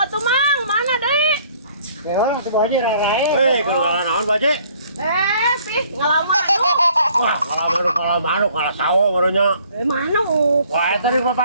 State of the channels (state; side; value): inverted; both; correlation -0.59